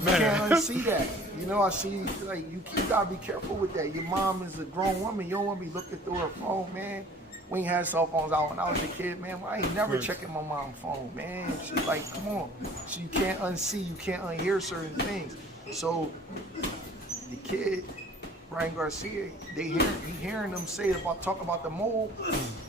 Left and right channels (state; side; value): normal; both; correlation 0.50